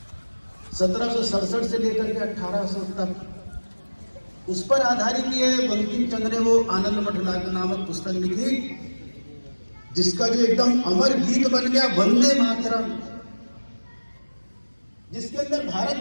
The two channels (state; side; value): inverted; both; correlation -1.00